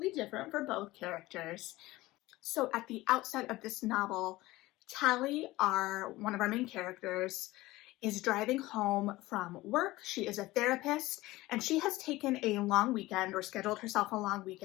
different for both characters. So at the outset of this novel, Tally, one of our main characters, is driving home from work. She is a therapist, and she has taken a long weekend or scheduled herself a long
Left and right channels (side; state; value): right; quieter; 18.7 dB